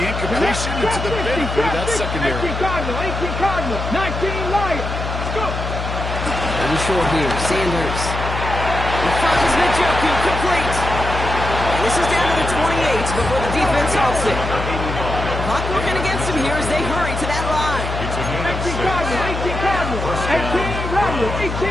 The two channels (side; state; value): left; noise; hum, 4 dB below the sound